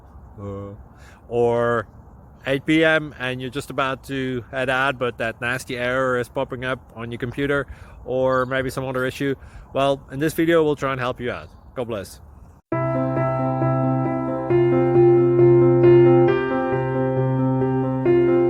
or 8 p.m. and you're just about to head out, but that nasty error is popping up on your computer, or maybe some other issue. Well, in this video we'll try and help you out. God bless.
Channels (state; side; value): identical; both; correlation 1.00